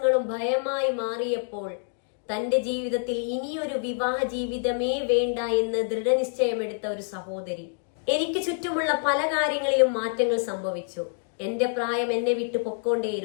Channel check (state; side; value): silent; right; digital silence